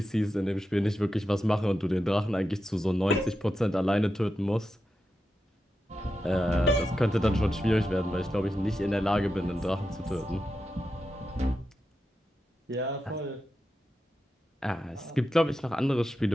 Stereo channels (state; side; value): normal; both; correlation 0.89